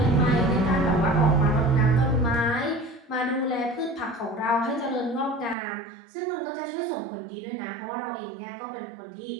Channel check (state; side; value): drops out; left; at 5.6 s